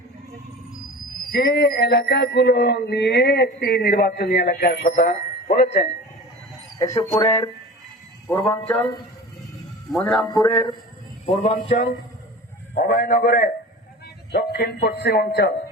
যে এলাকাগুলো নিয়ে একটি নির্বাচনী এলাকার কথা বলেছেন, কেশবপুরের পূর্বাঞ্চল, মনিরামপুরের পূর্বাঞ্চল, অভয়নগরের দক্ষিণ পশ্চিম অঞ্চল,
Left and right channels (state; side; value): normal; both; correlation 0.35